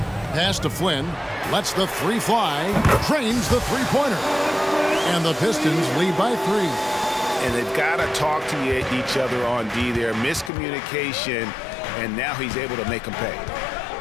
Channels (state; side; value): drops out; right; at 10.5 s